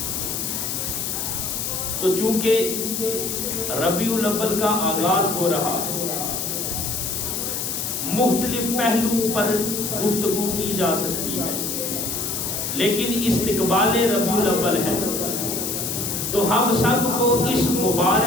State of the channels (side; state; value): left; noise; hiss, 2 dB below the sound